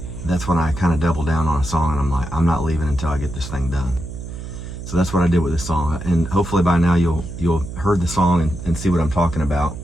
that's when I kind of double down on a song, and I'm like, I'm not leaving until I get this thing done. So that's what I did with this song, and hopefully by now you'll heard the song and see what I'm talking about.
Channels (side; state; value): right; noise; hum, 9 dB below the sound